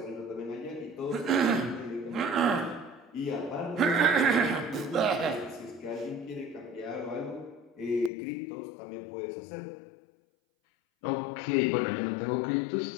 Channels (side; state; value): right; drops out; at 8.1 s